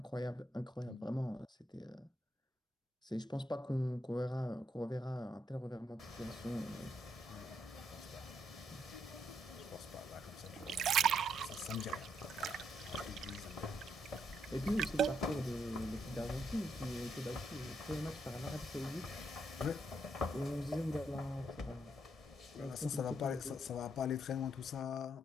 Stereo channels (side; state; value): both; normal; correlation 0.77